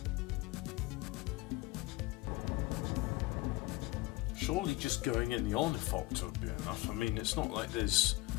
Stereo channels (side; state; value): right; quieter; 20.5 dB